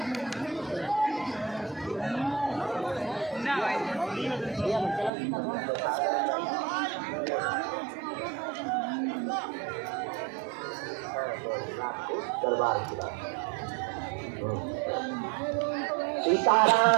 दरबार की बात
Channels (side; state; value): left; drops out; at 5.1 s